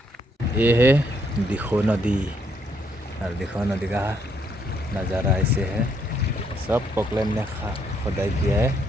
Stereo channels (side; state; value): both; normal; correlation 0.72